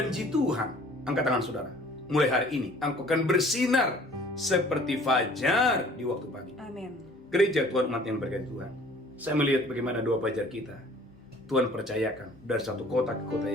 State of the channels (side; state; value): both; normal; correlation 0.52